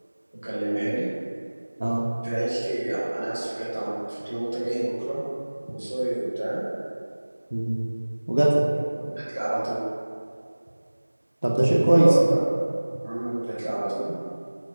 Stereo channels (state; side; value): inverted; both; correlation -1.00